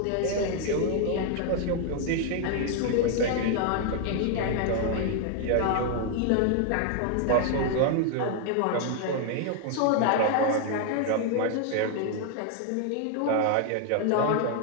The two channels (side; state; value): both; different; correlation 0.00